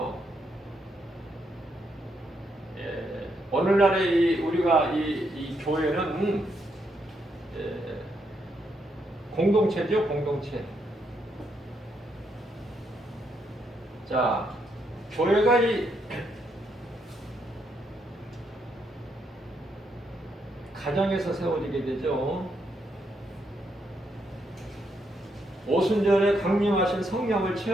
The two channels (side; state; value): both; normal; correlation 0.78